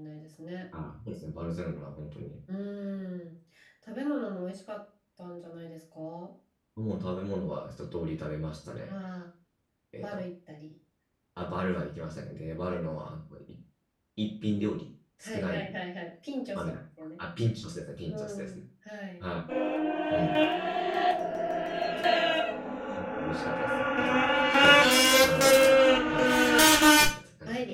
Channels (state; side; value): identical; both; correlation 1.00